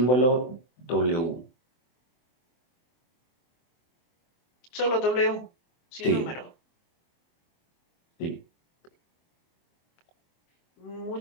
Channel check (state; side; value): late; right; 24 ms